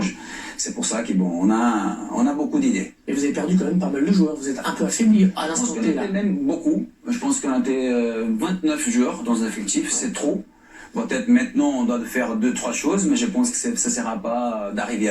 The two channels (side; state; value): both; identical; correlation 1.00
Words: C'est pour ça qu'on a beaucoup d'idées. Et vous avez perdu quand même pas mal de joueurs. Vous êtes un peu affaibli à Je pense l'instant qu'on T là. était même beaucoup. Je pense qu'on était 29 joueurs dans un effectif, c'est trop. Peut-être maintenant on doit faire 2-3 choses, mais je pense que ça ne sera pas d'arriver